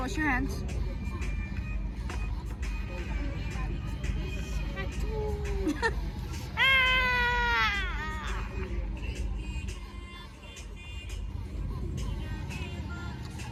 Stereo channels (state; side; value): identical; both; correlation 1.00